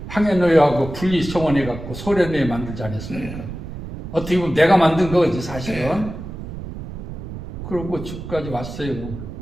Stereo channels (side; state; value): right; noise; rumble, 9 dB below the sound